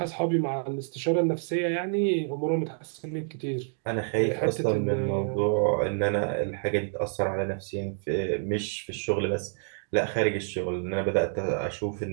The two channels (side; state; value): left; silent; digital silence